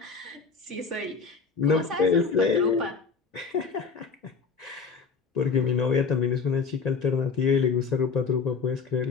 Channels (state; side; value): quieter; right; 5.2 dB